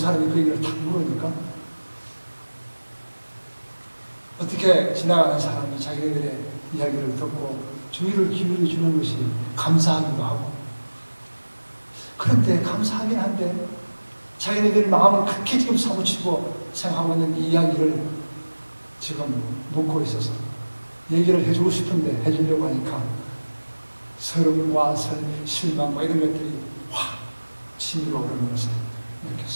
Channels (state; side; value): inverted; both; correlation -1.00